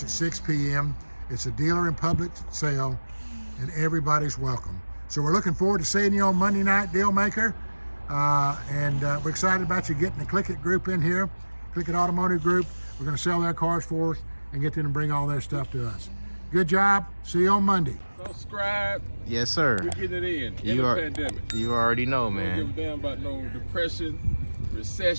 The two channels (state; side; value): inverted; both; correlation -1.00